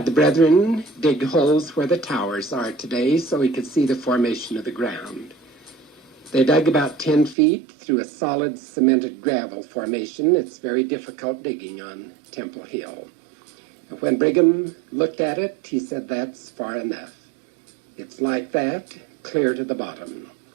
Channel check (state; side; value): drops out; left; at 7.4 s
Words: the brethren dig holes where the towers are today so he could see the formation of the ground. They dug about 10 feet through a solid cemented gravel formation. It's very difficult digging on Temple Hill. And when Brigham looked at it, he said, "That's far enough. It's like that, clear to the bottom."